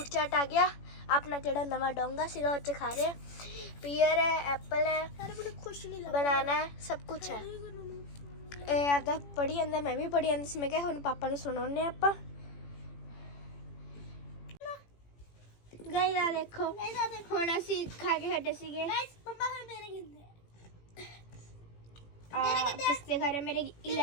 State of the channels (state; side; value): late; right; 18 ms